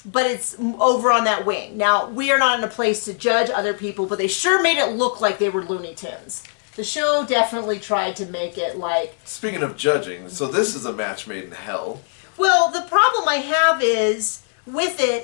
but it's over on that wing. Now, we are not in a place to judge other people, but they sure made it look like they were Looney Tunes. The show definitely tried to make it like... Speaking of judging, so this is a match made in hell. Well, the problem I have is, with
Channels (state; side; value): silent; right; 65 dB below the other